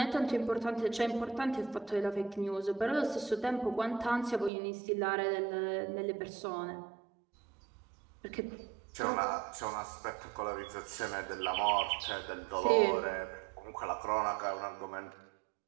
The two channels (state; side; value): drops out; left; at 4.5 s